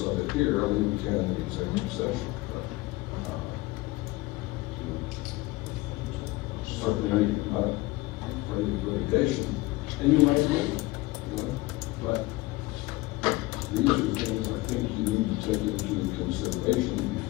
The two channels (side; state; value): right; quieter; 20.5 dB